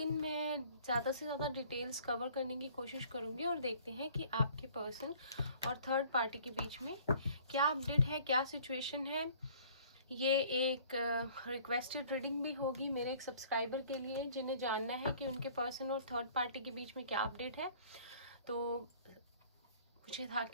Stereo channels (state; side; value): inverted; both; correlation -0.53